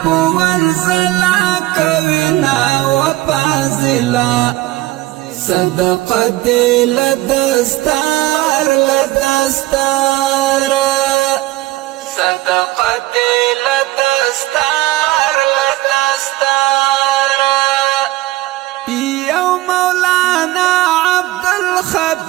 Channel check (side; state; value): left; quieter; 17.4 dB